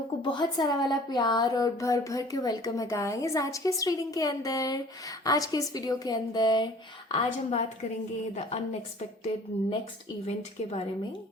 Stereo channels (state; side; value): normal; both; correlation 0.50